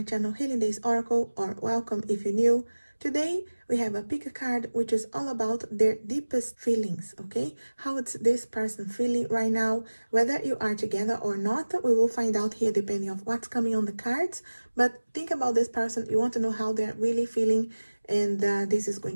channel Healing Days Oracle, or welcome if you're new. Today we have a pick a card which is all about their deepest feelings, okay? How it's this person feeling right now, whether you are together or not, we will find out here depending on what's coming on the cards. But think about this person, you want to know how they're really feeling, and this is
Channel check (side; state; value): both; inverted; correlation -1.00